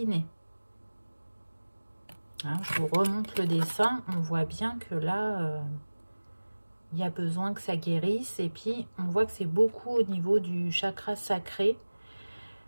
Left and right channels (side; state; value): both; inverted; correlation -1.00